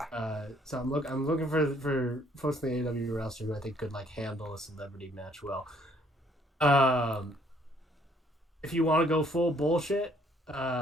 So I'm looking for folks in the AEW roster who I think could like handle a celebrity match well. If you want to go full bullshit,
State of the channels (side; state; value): both; normal; correlation 0.64